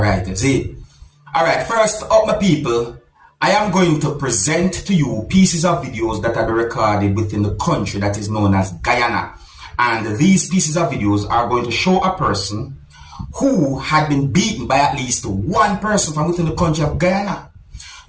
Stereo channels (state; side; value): identical; both; correlation 1.00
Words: See? Alright, first up, my people, I am going to present to you pieces of videos that have been recorded within the country that is known as Guyana. And these pieces of videos are going to show a person who had been beaten by at least one person from within the country of Guyana.